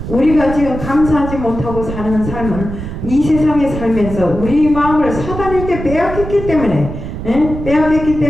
우리가 지금 감사하지 못하고 사는 삶은 이 세상에 살면서 우리 마음을 사단에게 빼앗겼기 때문에 빼앗겼기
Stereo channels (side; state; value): right; noise; rumble, 8 dB below the sound